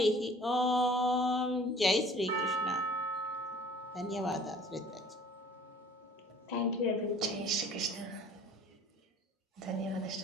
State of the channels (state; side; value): normal; both; correlation 0.50